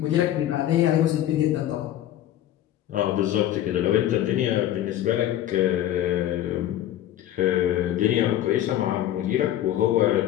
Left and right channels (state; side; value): quieter; right; 12.5 dB